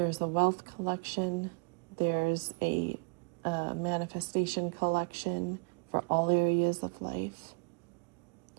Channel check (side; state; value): left; quieter; 34.8 dB